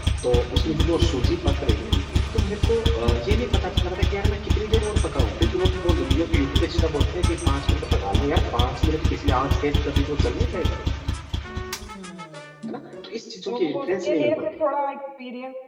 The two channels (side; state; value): both; identical; correlation 1.00